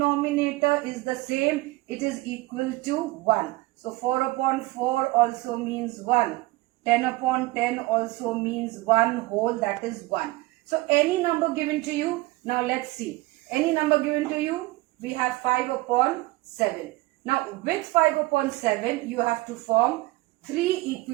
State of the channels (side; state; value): left; quieter; 20.7 dB